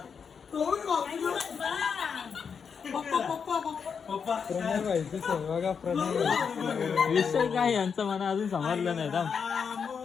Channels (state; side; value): quieter; right; 6.4 dB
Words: विषय काय यांचं मला अजून समजलं नाही.